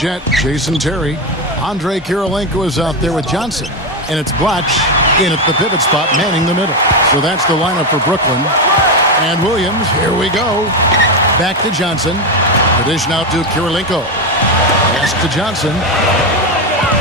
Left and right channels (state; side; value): normal; both; correlation 0.11